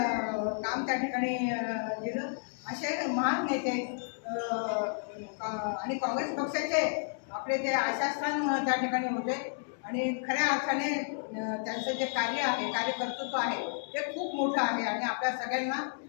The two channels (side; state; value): right; silent; digital silence